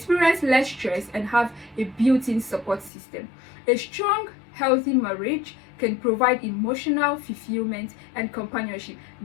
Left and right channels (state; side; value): drops out; right; at 2.9 s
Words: less stress, and have a built-in support system. A strong, healthy marriage can provide emotional fulfillment and companionship